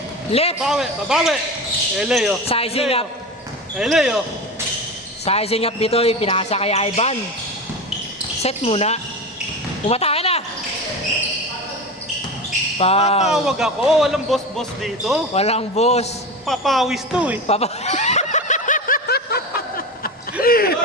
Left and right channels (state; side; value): normal; both; correlation 0.25